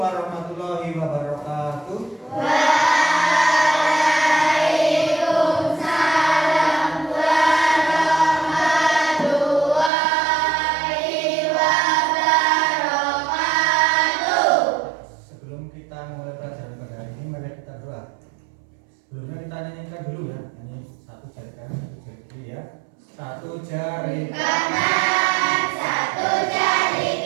wabarakatuh. Waalaikumsalam warahmatullahi wabarakatuh. Sebelum kita mulai pelajaran pada hari ini, mari kita doa. Sebelumnya kita nyanyikan dulu ya. Ini satu jari kanan, satu jari kiri ya. Satu jari Kanan, satu jari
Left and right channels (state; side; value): drops out; left; at 9.9 s